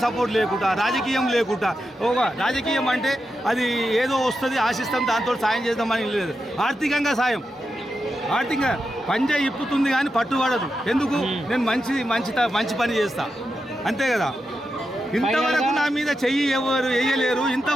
సపోర్ట్ లేకుండా ఒక రాజకీయం అంటే అది ఏదో వస్తుంది ఆశిస్తాం దాంతో సాయం చేద్దామని లేదు. ఆర్థికంగా సాయం, ఆర్థికంగా పంజా ఇప్పుతుంది కానీ పట్టుబడదు. ఎందుకు? నేను మంచి పని చేస్తా అంతే కదా. ఇంతవరకు నా మీద చెయ్యి ఎవరు వేయలేరు,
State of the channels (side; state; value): both; normal; correlation 0.88